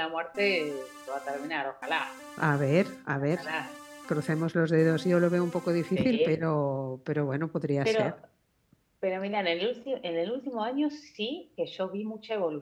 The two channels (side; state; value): both; identical; correlation 1.00